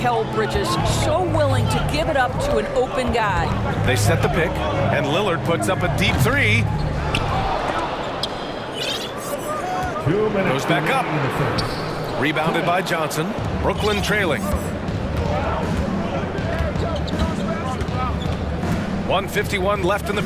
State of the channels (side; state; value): both; identical; correlation 1.00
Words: Bridges. So willing to give it up to an open guy. They set the pick, and Lillard puts up a deep 3. Goes back up. Rebounded by Johnson. Brooklyn trailing. 1:51 left in the